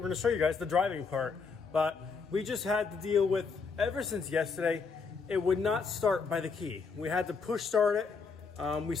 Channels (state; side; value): quieter; right; 5.0 dB